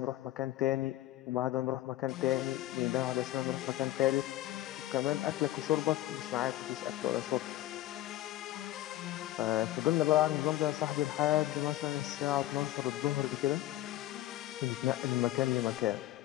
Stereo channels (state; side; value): quieter; right; 14.9 dB